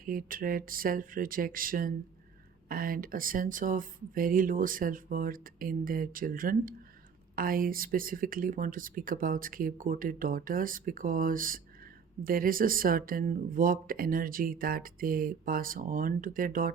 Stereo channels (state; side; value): quieter; left; 6.4 dB